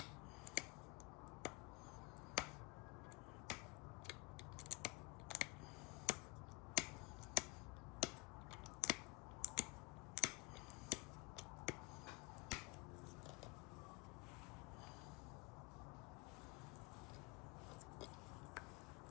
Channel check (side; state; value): right; quieter; 25.0 dB